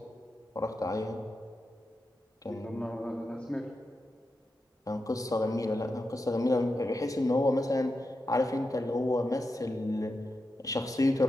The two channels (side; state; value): both; normal; correlation 0.88